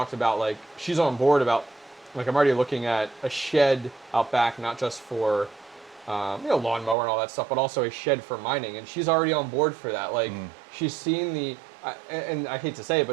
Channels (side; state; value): left; drops out; at 7.0 s